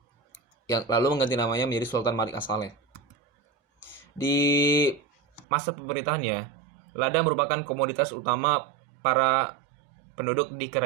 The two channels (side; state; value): left; drops out; at 5.5 s